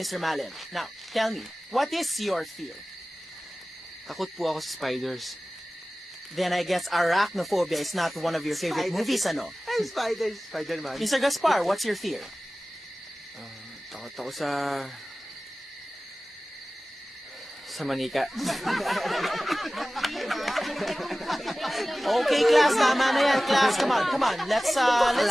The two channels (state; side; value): normal; both; correlation 0.97